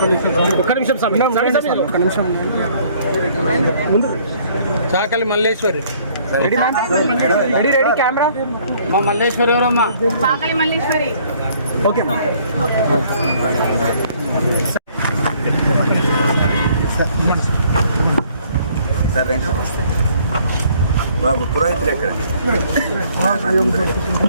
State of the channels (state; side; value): inverted; both; correlation -0.61